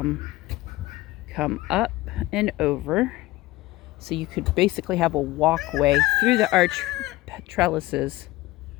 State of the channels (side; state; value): right; quieter; 18.1 dB